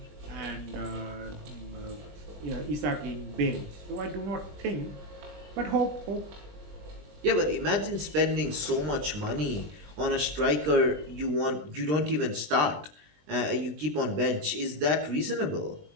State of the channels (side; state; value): left; late; 20 ms